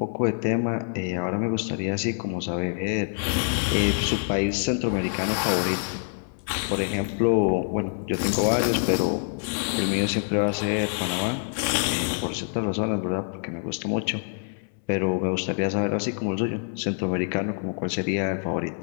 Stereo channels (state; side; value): silent; right; 61 dB below the other